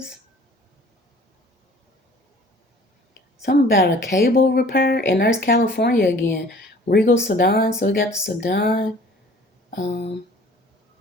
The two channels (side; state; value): both; normal; correlation 0.50